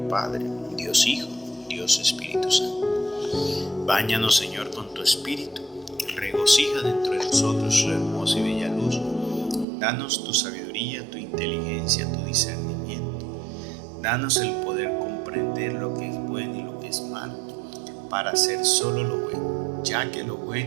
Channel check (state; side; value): drops out; left; at 9.7 s